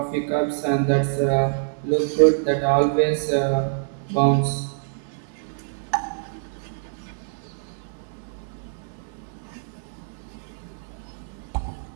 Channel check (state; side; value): silent; left; digital silence